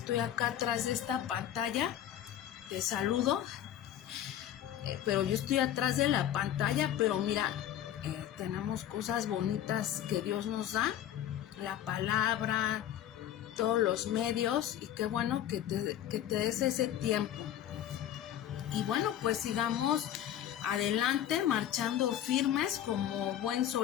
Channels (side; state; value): right; quieter; 11.1 dB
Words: acá atrás de esta pantalla, te saludo, pero yo estoy atrás de la pantalla, pero mira, tenemos cosas bonitas que Dios nos da, la palabra, todos los medios, y qué bueno que te des ese tiempo. Y bueno, pues sigamos adelante, marchando firmes como buen